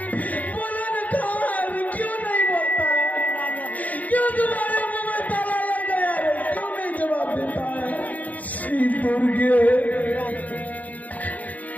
बोलो ना कहाँ है रे? क्यों नहीं बोलता है? क्यों तुम्हारे मुंह में ताला लग गया रे? क्यों नहीं जवाब देता है? श्री दुर्गे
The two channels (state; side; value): late; right; 0.077 ms